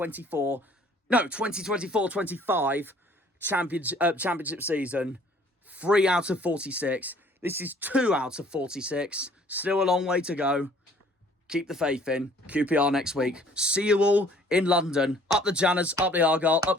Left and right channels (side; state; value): both; normal; correlation 0.56